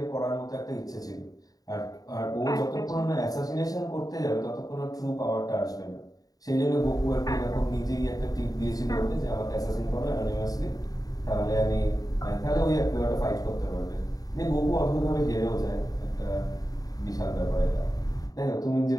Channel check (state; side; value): late; right; 0.18 ms